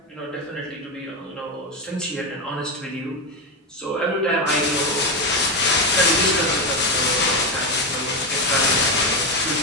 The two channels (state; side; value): normal; both; correlation 0.11